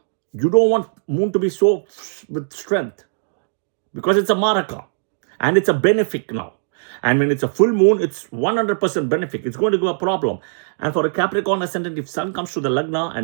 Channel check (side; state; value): left; silent; digital silence